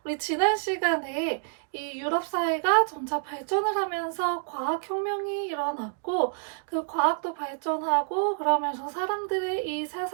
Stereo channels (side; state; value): left; silent; digital silence